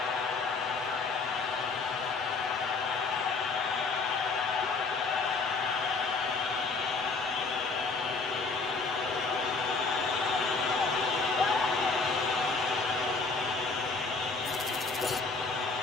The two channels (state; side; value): quieter; right; 4.2 dB